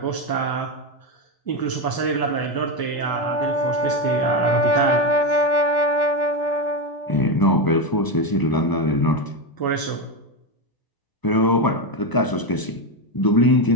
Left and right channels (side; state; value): right; late; 1.0 ms